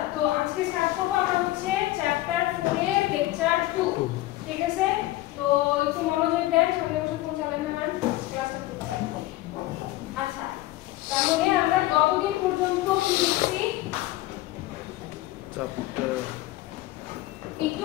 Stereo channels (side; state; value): right; quieter; 17.1 dB